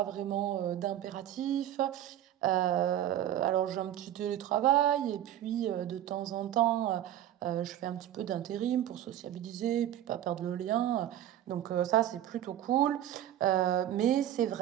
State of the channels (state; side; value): quieter; left; 11.9 dB